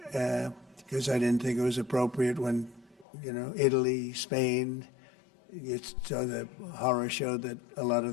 because I didn't think it was appropriate when, you know, Italy, Spain, it's the horror show that a lot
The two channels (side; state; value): right; drops out; at 3.1 s